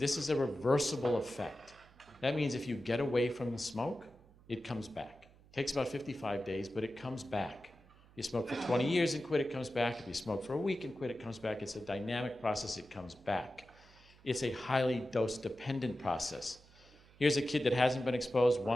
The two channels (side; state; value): right; noise; hum, 25 dB below the sound